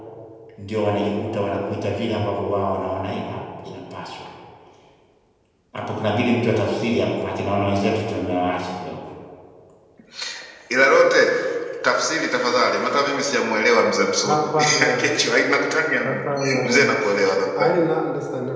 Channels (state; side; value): identical; both; correlation 1.00